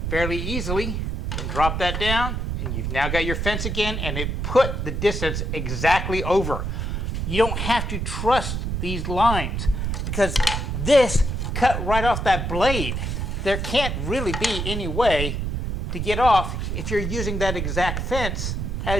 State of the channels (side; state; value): right; noise; rumble, 2 dB below the sound